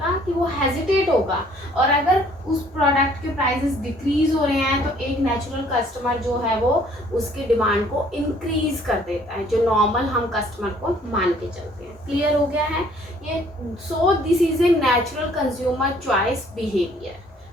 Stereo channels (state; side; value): normal; both; correlation 0.59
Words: कि वो हेजिटेट होगा. और अगर उस प्रोडक्ट के प्राइसेस डिक्रीज हो रहे हैं तो एक नेचुरल कस्टमर जो है वो उसकी डिमांड को इंक्रीज कर देता है, जो नॉर्मल हम कस्टमर को मान के चलते हैं. क्लियर हो गया है ये? So this is a natural consumer choice behaviour.